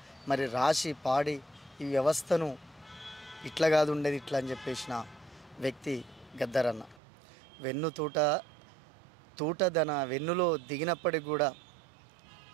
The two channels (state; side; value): drops out; left; at 7.0 s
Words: మరి రాసి పాడి ఈ వ్యవస్థను ఇట్లా కాదు ఉండేది ఇట్లా అని చెప్పేసిన వ్యక్తి గద్దరన్న. తూట తన వెన్నులో దిగినప్పటికి కూడా